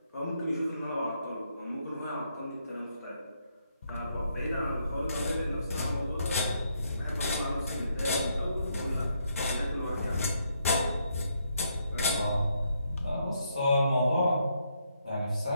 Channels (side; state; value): both; inverted; correlation -0.76